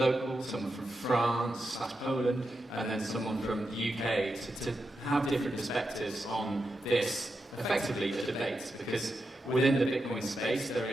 someone from France/Poland, and then someone from the UK to have different perspectives on this effectively a debate, because within the Bitcoin space there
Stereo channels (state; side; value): normal; both; correlation 0.87